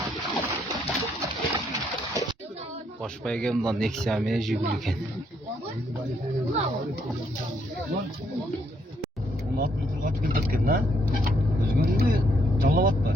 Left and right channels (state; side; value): normal; both; correlation 0.72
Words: Boşpay gelmeden Nexia'ya jigülüken. 16 metre kaç gün tutken lan? Özgün'ü de çalap atma.